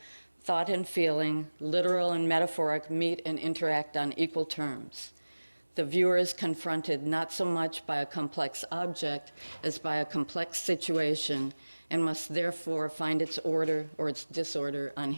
thought and feeling, literal and metaphoric meet and interact on equal terms. The viewer is confronted not so much by a complex object as by a complex situation and must therefore find its order or its disorder on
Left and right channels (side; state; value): both; inverted; correlation -1.00